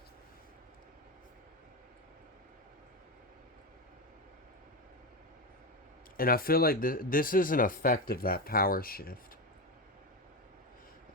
And I feel like this is an effect of that power shift.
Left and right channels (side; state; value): both; normal; correlation 0.16